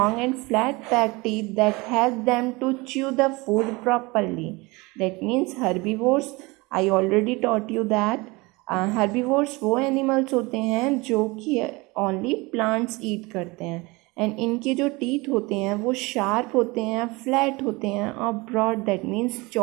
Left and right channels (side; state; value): left; quieter; 24.4 dB